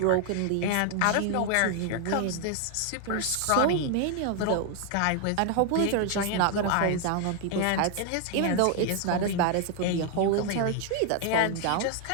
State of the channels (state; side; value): different; both; correlation 0.00